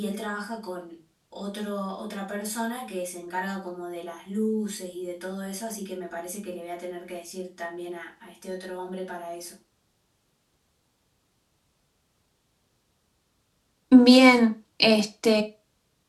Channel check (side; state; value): both; identical; correlation 1.00